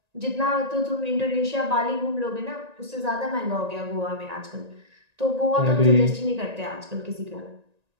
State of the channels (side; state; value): left; late; 1.9 ms